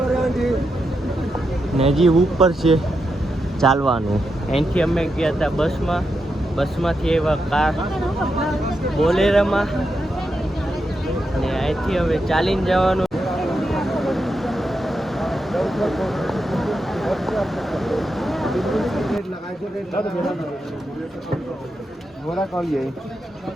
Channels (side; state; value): both; normal; correlation 0.85